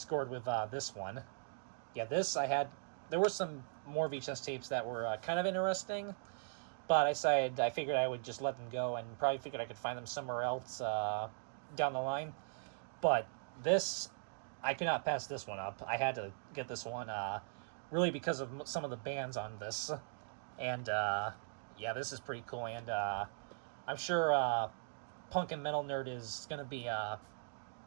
with this one. Yeah, there were some more VHS tapes that were kind of interesting, but I figured I would just let them go, and probably figured I could find them somewhere else down the line. But this, I could not pass this one up. I had to get this one, really because of some of the bands on this. And, yeah, this is pretty cool, and I'm sure Punk and Metal Nerd is going to be a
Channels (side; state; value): left; silent; digital silence